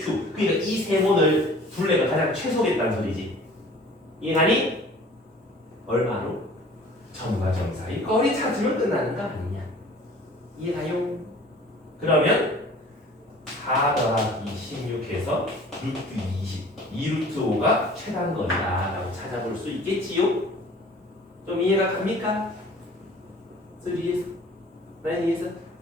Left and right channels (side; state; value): both; normal; correlation 0.48